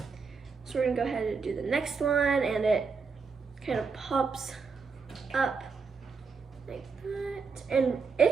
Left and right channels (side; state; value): left; quieter; 5.1 dB